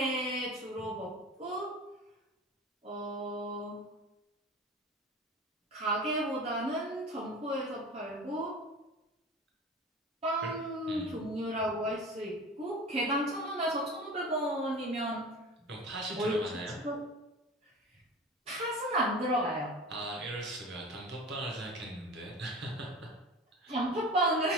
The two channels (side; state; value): both; normal; correlation 0.35